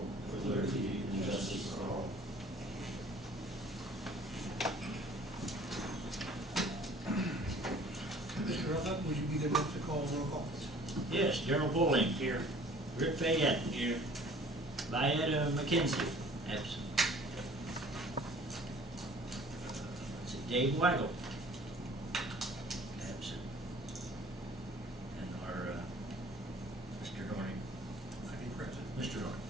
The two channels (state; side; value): normal; both; correlation 0.51